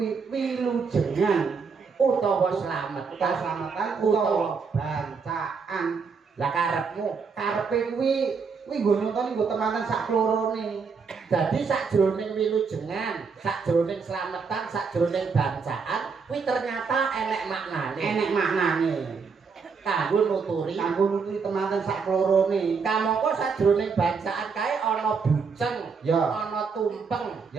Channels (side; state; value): left; quieter; 5.3 dB